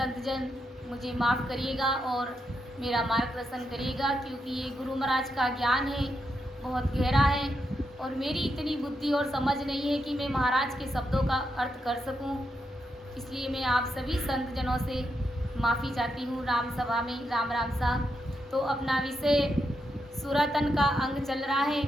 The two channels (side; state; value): both; normal; correlation 0.83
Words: मुझे माफ़ करिएगा और मेरा मार्गदर्शन करिएगा, क्योंकि ये गुरु महाराज का ज्ञान है, बहुत गहरा है और मेरी इतनी बुद्धि और समझ नहीं है कि मैं महाराज के शब्दों का अर्थ कर सकूं। इसलिए मैं आप सभी संत जनों से माफ़ी चाहती हूँ। राम सभा में राम राम सा। तो अपना विषय सुरातन का अंग चल रहा है।